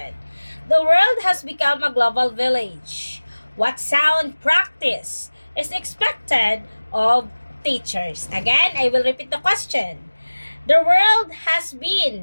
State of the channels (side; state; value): both; inverted; correlation -1.00